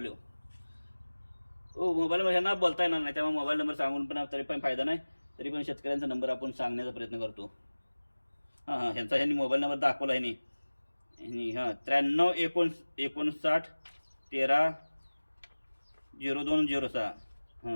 मोबाईल नंबर ह्यांना बोलता येणार नाही, त्यामुळे मोबाईल नंबर सांगून पण तरी पण फायदा नाही. तरी पण शेतकऱ्यांचा नंबर आपण सांगण्याचा प्रयत्न करतो. ह्यांनी मोबाईल नंबर दाखवला आहे. 93-59 13 0206.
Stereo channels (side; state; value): both; inverted; correlation -1.00